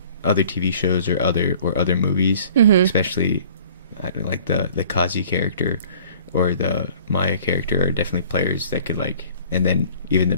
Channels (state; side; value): inverted; both; correlation -0.51